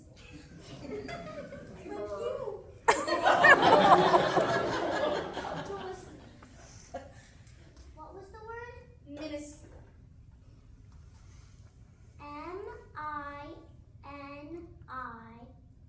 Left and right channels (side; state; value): both; identical; correlation 1.00